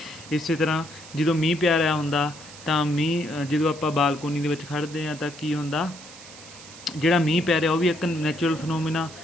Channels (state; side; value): noise; right; hiss, 17 dB below the sound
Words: इस तरह जो मीह पै रहा हुंदा तो मीह जो आप बालकोनी दे विच खड़दे हैं तो की हुंदा, जिहड़ा मीह पै रहा वो भी एक नैचुरल फिनोमिना,